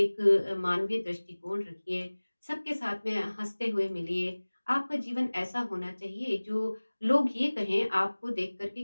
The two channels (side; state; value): both; inverted; correlation -1.00